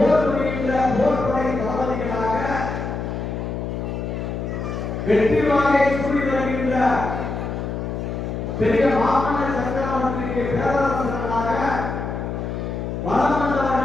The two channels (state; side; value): noise; left; hum, 4 dB below the sound